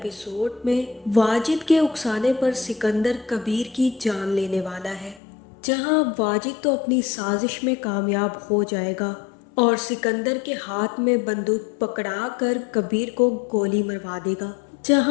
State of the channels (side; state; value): right; drops out; at 5.2 s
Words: में वाजिद के उकसाने पर सिकंदर कबीर की जान लेने वाला है। जहां अब वाजिद तो अपनी साजिश में कामयाब हो जाएगा और सिकंदर के हाथ में बंदूक पकड़ा कर कबीर को गोली मरवा देगा।